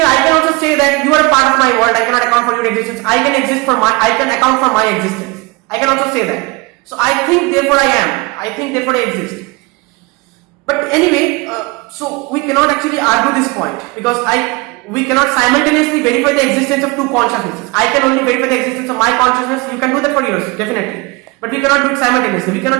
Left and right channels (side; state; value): left; quieter; 25.3 dB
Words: I can also say that you are a part of my world. I cannot account for your existence. I can account for my existence. I can also say that. So I think, therefore I am. I think, therefore I exist. But anyway, so we cannot actually argue this point because we cannot simultaneously verify the existence of two consciousnesses. I can only verify the existence of my consciousness. You can do that for yours, definitely. But we cannot do it simultaneously. We cannot